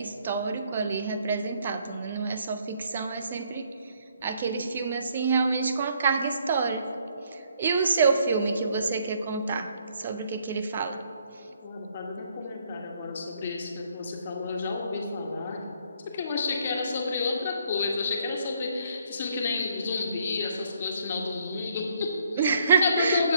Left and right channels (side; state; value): both; inverted; correlation -0.67